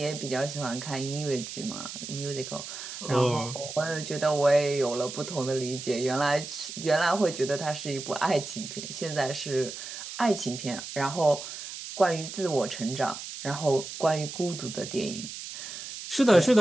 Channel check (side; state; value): right; noise; hiss, 9 dB below the sound